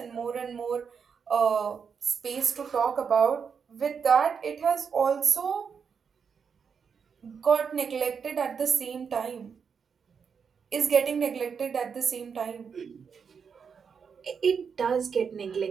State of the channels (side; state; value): left; quieter; 6.4 dB